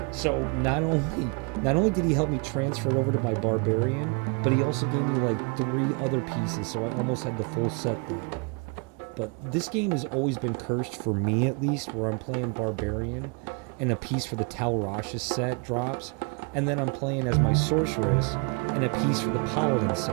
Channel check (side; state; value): left; quieter; 34.3 dB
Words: So not only did he help me transfer it over to my barbarian, but he also gave me like 3 other pieces, so I almost had the full set there. But this game has always been cursed, for me at least, where I'm playing barbarian and a piece for the Tal Rasha set drops, and then I'm playing as my sorceress and a piece for the paladin